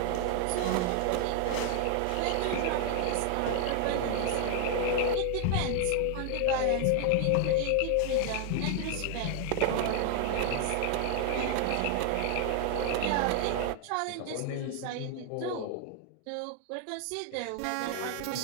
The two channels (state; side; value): different; both; correlation 0.00